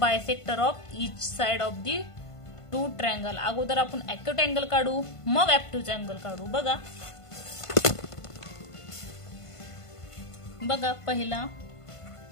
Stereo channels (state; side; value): late; right; 1.5 ms